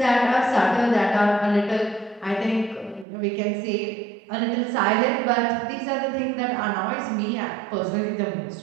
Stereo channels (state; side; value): drops out; left; at 3.1 s